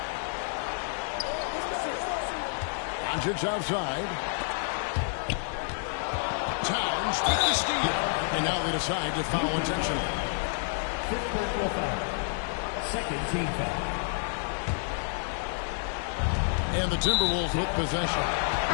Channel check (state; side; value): silent; right; digital silence